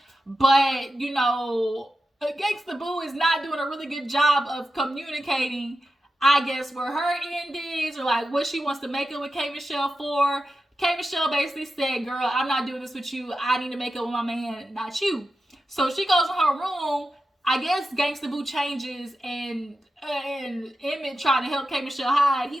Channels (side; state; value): both; normal; correlation 0.91